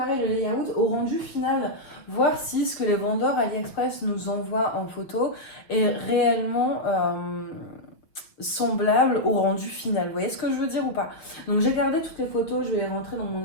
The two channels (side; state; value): right; late; 6.3 ms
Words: le layout au rendu final, voir si ce que les vendeurs AliExpress nous envoient en photo est réellement semblable au rendu final. Vous voyez ce que je veux dire ou pas? Donc j'ai gardé toutes les photos, je vais les rentrer dans mon